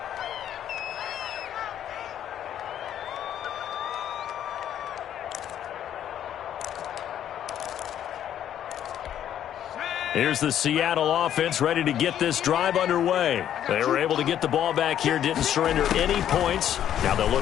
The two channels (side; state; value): right; quieter; 10.5 dB